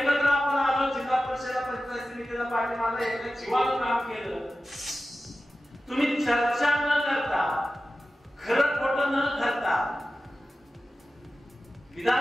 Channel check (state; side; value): normal; both; correlation 0.94